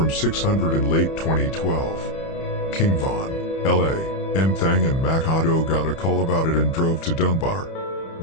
600 in late 2012. King Von, L.A.M. Thang and Makato got a call about it and drove to Dunbar.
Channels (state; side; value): late; right; 31 ms